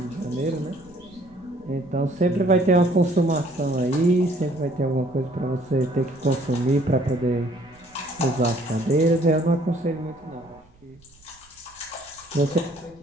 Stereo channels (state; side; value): noise; right; rumble, 28 dB below the sound